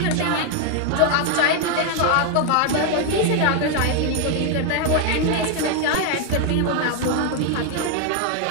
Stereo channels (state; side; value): different; both; correlation 0.00